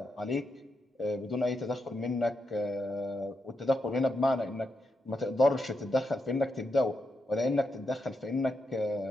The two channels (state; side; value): normal; both; correlation 0.84